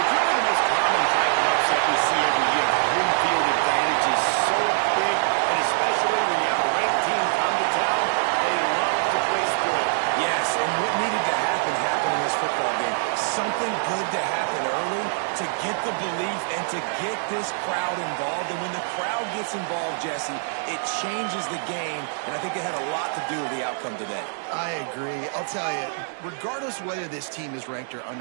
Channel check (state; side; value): silent; left; digital silence